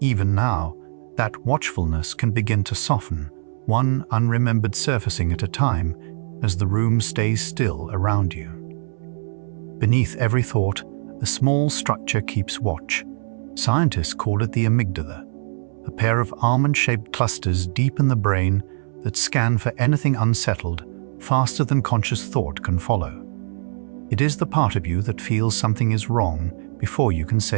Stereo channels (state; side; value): silent; left; 64 dB below the other